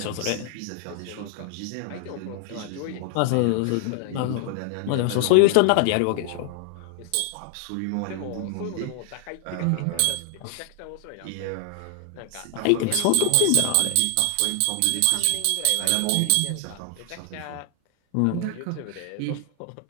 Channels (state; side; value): different; both; correlation 0.00